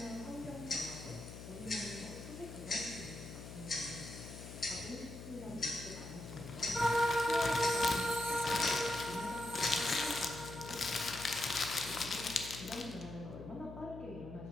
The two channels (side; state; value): left; noise; hum, 11 dB below the sound